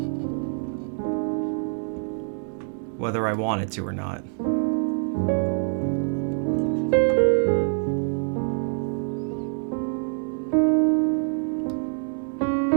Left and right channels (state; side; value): silent; left; 62 dB below the other